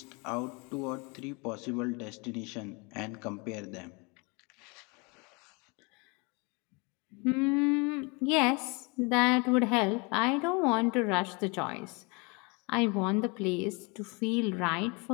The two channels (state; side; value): quieter; right; 30.0 dB